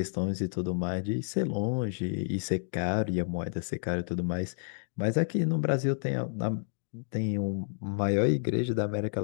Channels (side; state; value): right; silent; digital silence